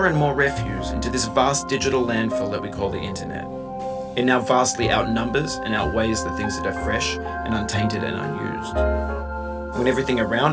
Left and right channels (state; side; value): identical; both; correlation 1.00